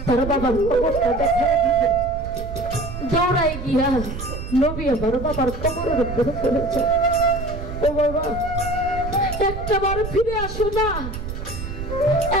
তার বাবার খবরটা দেখা দৌড়াই গিয়া নবী আমার বাবার কবরের উপরে পড়েছে। ও বাবা, একটা বার ফিরে আসো না।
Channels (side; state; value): right; noise; rumble, 7 dB below the sound